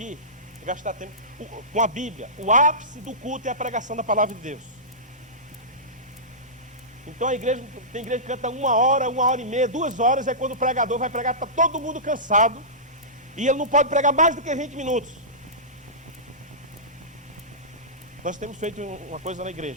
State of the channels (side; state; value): both; normal; correlation -0.19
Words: gastar tempo com a Bíblia. O ápice do culto é a pregação da palavra de Deus. Então tem igreja que canta 1 hora, 1h30, 2 horas, é quando o pregador vai pregar, está todo mundo cansado. E ele não pode pregar mais do que 20 minutos. Nós temos feito uma coisa na